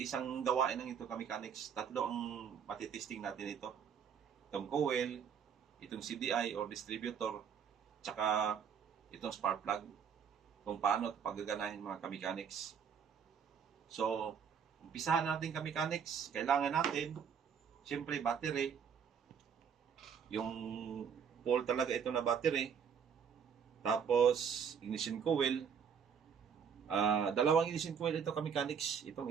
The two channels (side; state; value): left; quieter; 7.3 dB